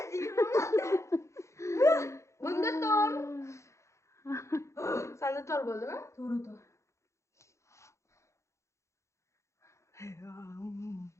20 marta. Bunda to'g'ri. Senda to'g'ri bo'ldimi? To'g'ri.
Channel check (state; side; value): late; right; 0.14 ms